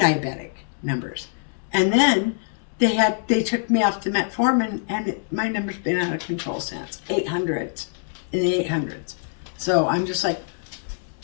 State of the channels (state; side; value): silent; right; digital silence